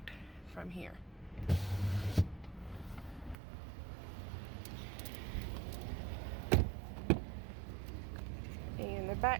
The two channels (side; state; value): left; drops out; at 3.4 s